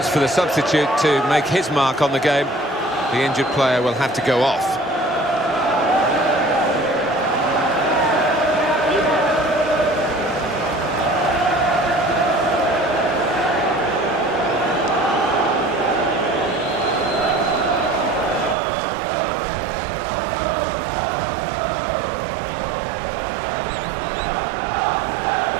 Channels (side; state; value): left; drops out; at 18.6 s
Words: for the substitute to make his mark on the game. The injured player will have to go off.